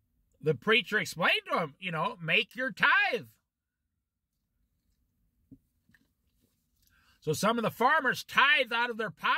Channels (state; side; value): identical; both; correlation 1.00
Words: the preacher explained to him, make your tithe. So some of the farmers tithed out of their